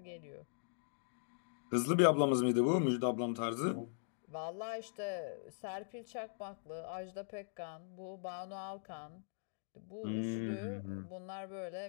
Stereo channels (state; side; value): silent; right; digital silence